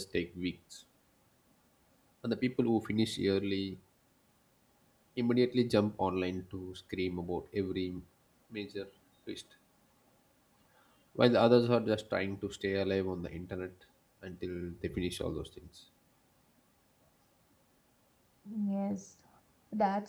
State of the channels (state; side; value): identical; both; correlation 1.00